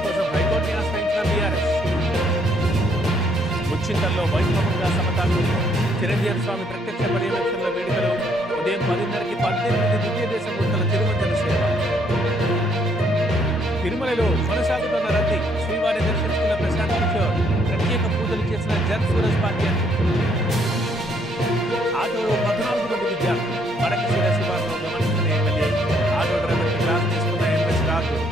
కోసం హైకోర్టుని ఆశ్రయించిన బీఆర్ఎస్ ముచ్చింతల్లో వైభవంగా సమతాలు చిరంజీవి స్వామి ప్రత్యక్ష పర్యవేక్షణలో వేడుకలు ఉదయం 10:30కి 18 దివ్య దేశ మూర్తుల తిరుమంజన సేవ తిరుమలలో కొనసాగుతున్న రద్దీ శ్రీవారి దర్శించుకున్న ప్రశాంత్ కిషోర్ ప్రత్యేక పూజలు చేసిన జన్ సూరజ్ పార్టీ ఆటోలో 14 మంది విద్యార్థులు వడకశిర శివార్లో గమనించిన ఎమ్మెల్యే ఆటో డ్రైవర్ క్లాస్ తీసుకున్న ఎంఎస్ రాజు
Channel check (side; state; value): both; normal; correlation 0.68